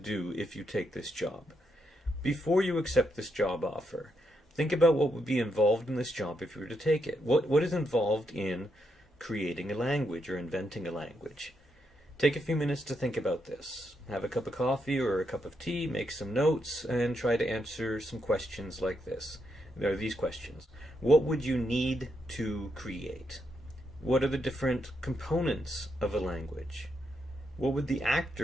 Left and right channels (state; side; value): normal; both; correlation 0.80